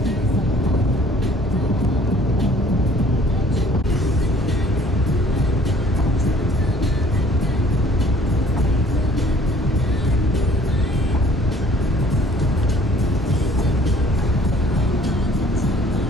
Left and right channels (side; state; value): both; normal; correlation 0.55